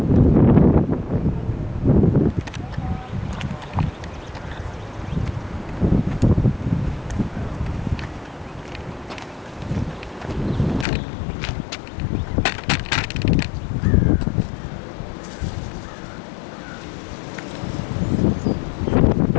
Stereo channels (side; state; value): right; drops out; at 10.9 s